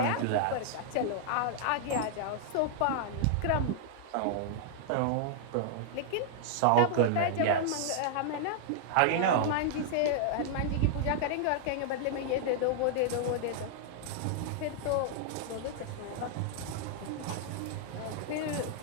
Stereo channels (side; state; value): both; different; correlation -0.01